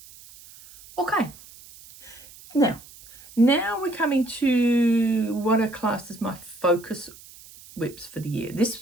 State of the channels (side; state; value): right; noise; hiss, 21 dB below the sound